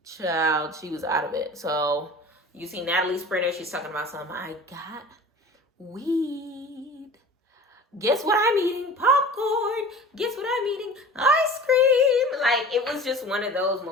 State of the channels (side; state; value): both; normal; correlation 0.40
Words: Child, she was out of it. So you see Natalie Sprinter, she's talking about something. I got weed. Guess what I'm eating? Popcorn. Guess what I'm eating? Ice cream. Like, it was just one of those